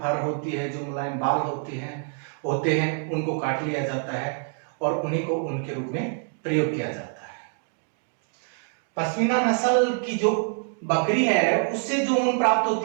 होती है, जो मुलायम बाल होते हैं उनको काट लिया जाता है और उन्हीं को ऊन के रूप में प्रयोग किया जाता है। पश्मीना नस्ल की जो बकरी है उससे जो ऊन प्राप्त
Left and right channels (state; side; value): silent; left; 57 dB below the other